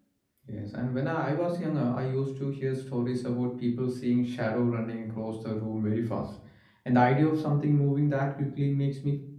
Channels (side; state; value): both; identical; correlation 1.00